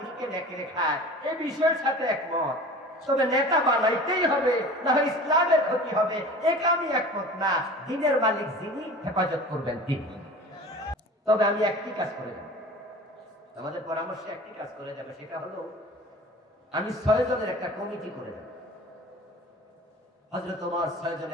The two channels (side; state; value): both; normal; correlation 0.40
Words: নেকড়ে খায়, এই বিষয়ের সাথে একমত। তবে নেতা বানাইতেই হবে, না হয় ইসলামের ক্ষতি হবে, এটা আমি একমত না। দ্বীনের মালিক যিনি, হেফাজত করবেন তিনি। তবে আমি একটি কাজ করে যাব, আমাদের পরামর্শে একটি কাজ করে যাবে, সেটা হলো আমি 6 জনের একটা কমিটি করে যাব। হযরত ওমর 6